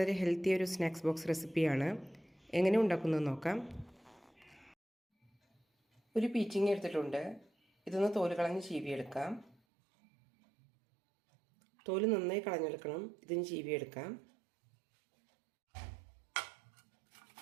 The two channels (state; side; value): drops out; left; at 9.6 s